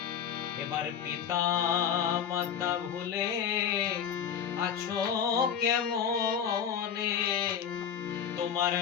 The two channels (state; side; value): quieter; right; 8.1 dB